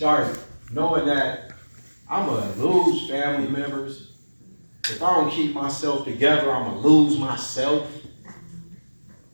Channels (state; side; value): inverted; both; correlation -1.00